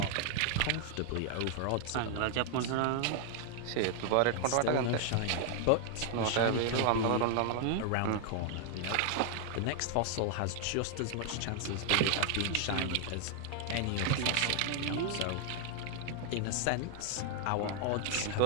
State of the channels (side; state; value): both; different; correlation 0.00